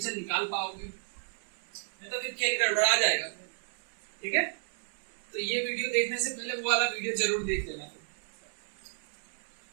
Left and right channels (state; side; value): silent; left; 56 dB below the other